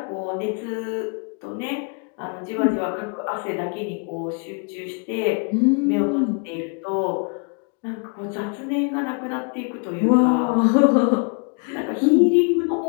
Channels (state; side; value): quieter; right; 39.3 dB